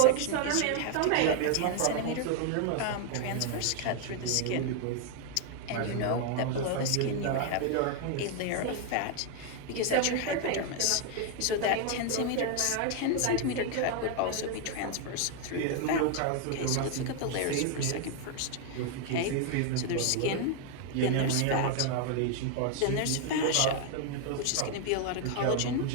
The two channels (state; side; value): different; both; correlation 0.00